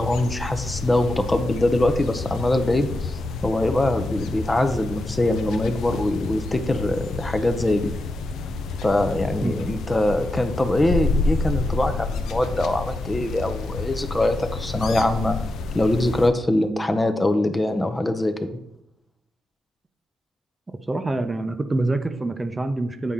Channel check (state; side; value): normal; both; correlation 0.88